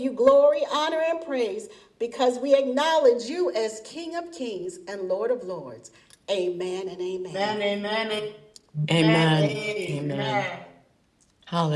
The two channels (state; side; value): identical; both; correlation 1.00